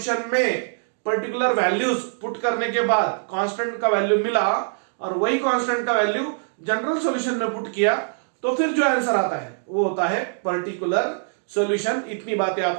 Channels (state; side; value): silent; left; digital silence